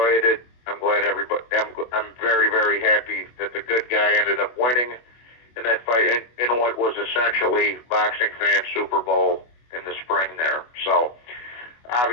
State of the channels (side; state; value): right; late; 24 ms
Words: it. I'm very, very happy that the good guy ended up winning in that fight in what was essentially boxing fan Super Bowl in the spring there. So